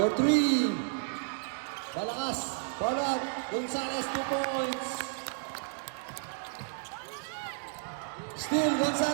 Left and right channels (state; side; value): silent; left; digital silence